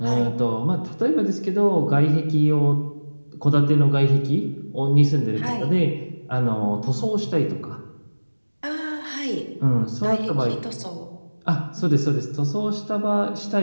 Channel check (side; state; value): both; inverted; correlation -1.00